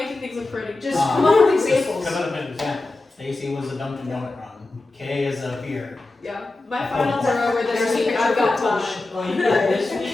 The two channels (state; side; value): quieter; right; 3.1 dB